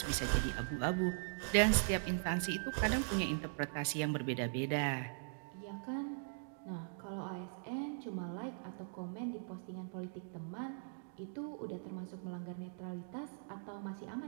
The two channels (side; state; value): left; silent; digital silence